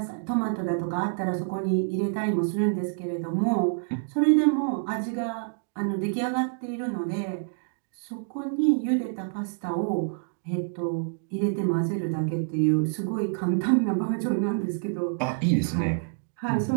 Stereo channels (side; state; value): left; silent; digital silence